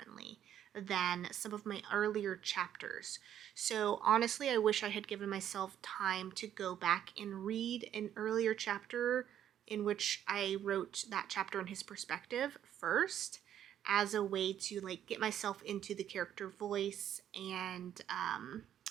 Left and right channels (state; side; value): quieter; left; 10.4 dB